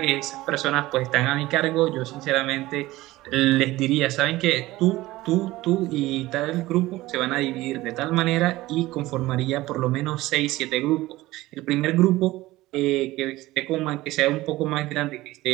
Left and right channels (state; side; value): quieter; left; 18.0 dB